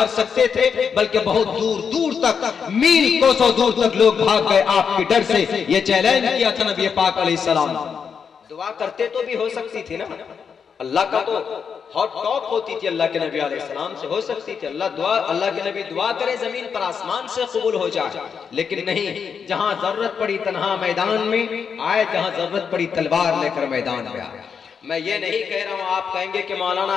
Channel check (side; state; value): right; quieter; 6.5 dB